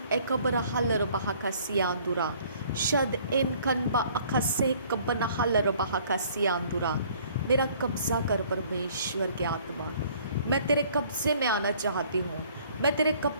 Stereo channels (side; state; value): both; inverted; correlation -0.57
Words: एकबर हलर बहाका सियांदुरा। शद इन कनबा अखा सह कबना हलर बहाका सियांदुरा। मेरा कब्ज़ा कर परमेश्वर के आत्मा। मैं तेरे कब्ज़े में आना चाहती हूँ। मैं तेरे